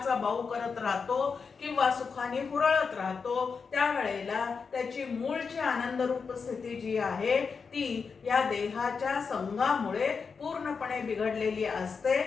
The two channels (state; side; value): quieter; right; 5.4 dB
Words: बाऊ करत राहतो किंवा सुखाने हुरळत राहतो, त्यावेळेला त्याची मूळची आनंदरूप स्थिती जी आहे ती या देहाच्या संघामुळे पूर्णपणे बिघडलेली असते.